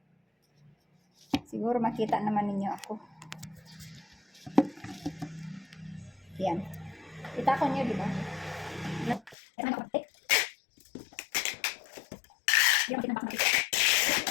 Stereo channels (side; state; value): right; drops out; at 9.3 s